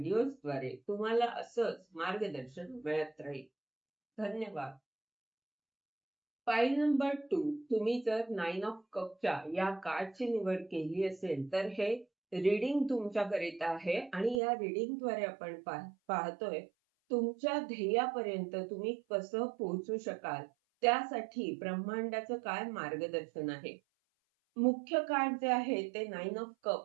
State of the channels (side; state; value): left; drops out; at 14.4 s